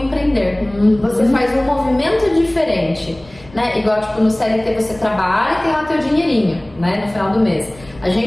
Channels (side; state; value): left; noise; rumble, 23 dB below the sound